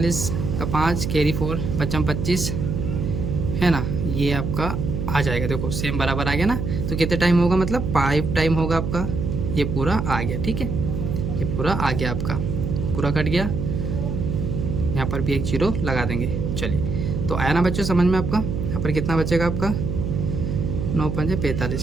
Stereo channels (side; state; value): right; noise; hum, 3 dB below the sound